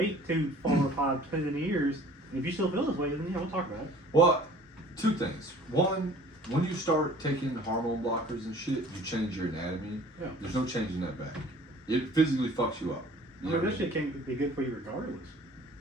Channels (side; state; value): both; normal; correlation 0.50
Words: 2, 4, 5, 10 years. And if you still feel this way, then yeah, we'll talk about it. Well, two things. One, when you start taking hormone blockers and shit, you change your anatomy. Yeah. There's no changing that back. It physically fucks you up. I mean, that shit can't be good for you regardless.